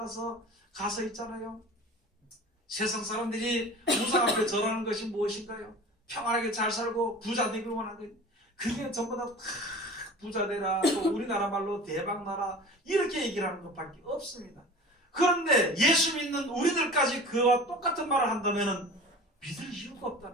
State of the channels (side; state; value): both; normal; correlation 0.39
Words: 가서 있잖아요. 세상 사람들이 우상 앞에 절하는 것이 무엇인가요? 평안하게 잘 살고 부자 되길 원하는 거예요. 그게 전부 다 부자 되라, 또 우리나라 말로 대박 나라, 이렇게 얘기를 하는 것밖에 없습니다. 그런데 예수 믿는 우리들까지 그와 똑같은 말을 한다면 믿을 이유가